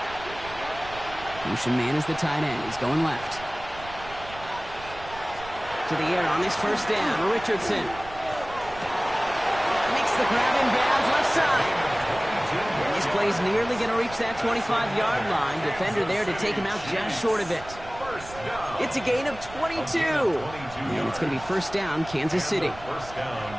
Motion man is the tight end. He's going left. To the air on this first down. Richardson makes the grab in bounds left side. And this play's nearly going to reach that 25-yard line. Defender there to take him out just short of it. It's a gain of 22. And it's going to be first down, Kansas City. First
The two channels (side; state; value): right; noise; rumble, 16 dB below the sound